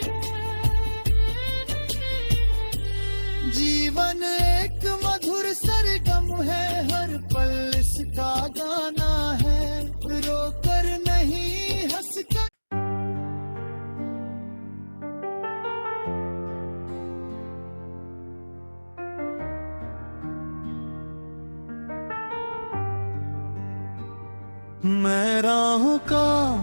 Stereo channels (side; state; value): both; inverted; correlation -1.00